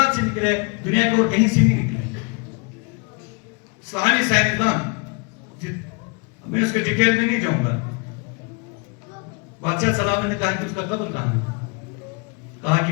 سے نکلے دنیا کے اور کہیں سے نہیں نکلے. اسلامی سائنسدان، میں اس کے ڈیٹیل میں نہیں جاؤں گا، بادشاہ سلام نے کہا کہ اس کا قبر کہاں ہے؟ کہا کہ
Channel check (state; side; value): quieter; right; 32.7 dB